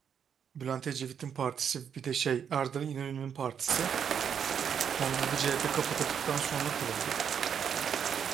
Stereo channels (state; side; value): quieter; left; 7.8 dB